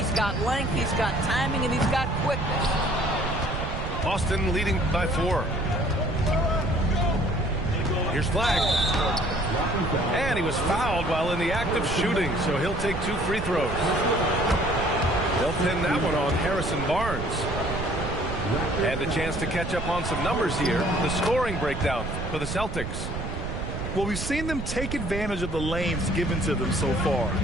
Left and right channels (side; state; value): right; noise; rumble, 5 dB below the sound